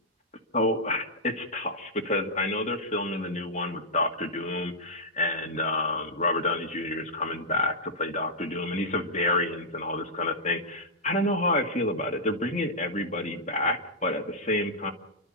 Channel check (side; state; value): both; normal; correlation -0.10